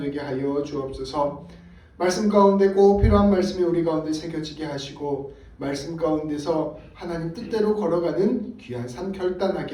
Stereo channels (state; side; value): identical; both; correlation 1.00